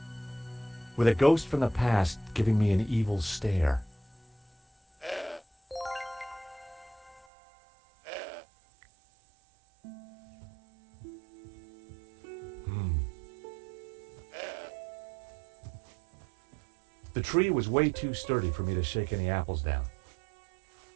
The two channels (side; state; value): left; drops out; at 7.2 s